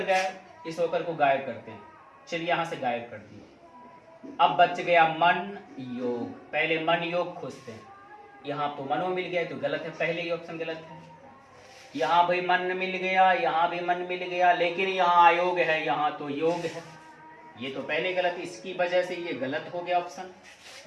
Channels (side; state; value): both; identical; correlation 1.00